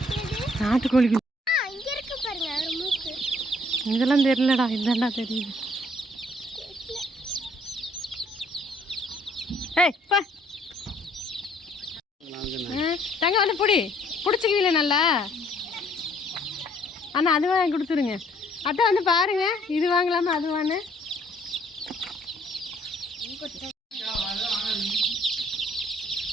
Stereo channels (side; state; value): both; normal; correlation 0.63